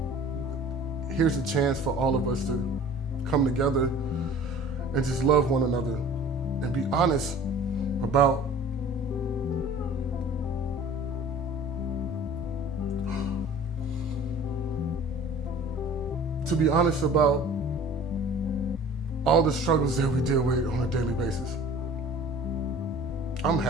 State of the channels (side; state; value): both; normal; correlation 0.45